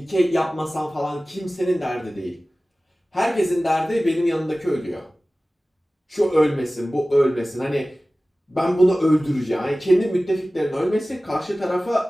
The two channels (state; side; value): normal; both; correlation 0.97